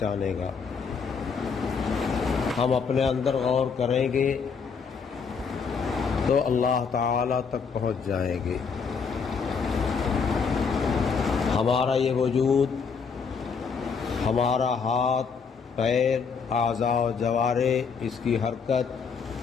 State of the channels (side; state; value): right; quieter; 5.7 dB